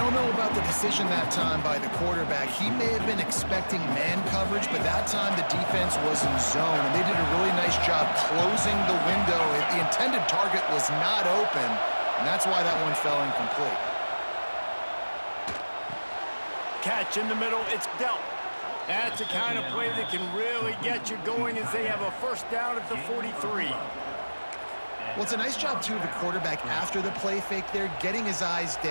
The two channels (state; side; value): inverted; both; correlation -1.00